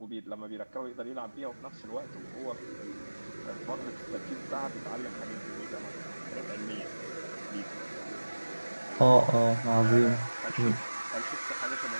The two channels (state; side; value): inverted; both; correlation -1.00